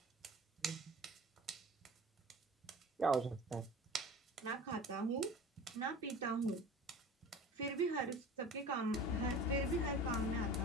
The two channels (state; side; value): normal; both; correlation 0.38